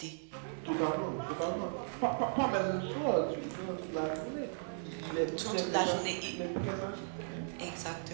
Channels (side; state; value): left; silent; digital silence